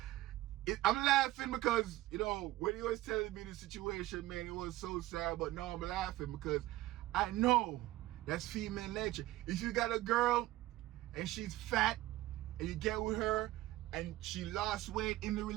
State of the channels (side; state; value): left; quieter; 16.7 dB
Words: I'm laughing because, you know, when he was telling me the situation, man, it was so sad. But no, I'm laughing because I know that's female nature. If you got a girl and she's fat and you get with her and she lost weight in the